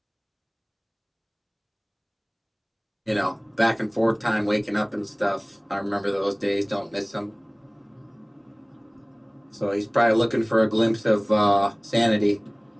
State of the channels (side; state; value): both; identical; correlation 1.00